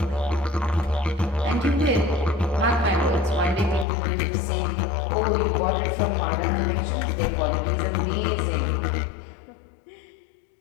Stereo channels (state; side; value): drops out; right; at 3.9 s